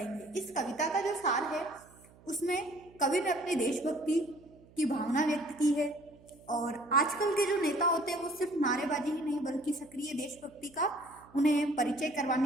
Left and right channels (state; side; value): noise; right; hum, 25 dB below the sound